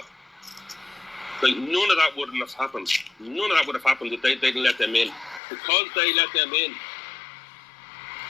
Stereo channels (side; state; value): right; drops out; at 5.4 s